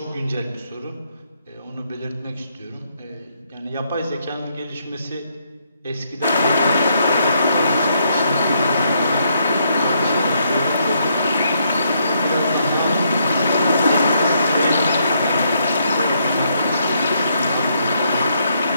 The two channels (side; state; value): both; inverted; correlation -0.74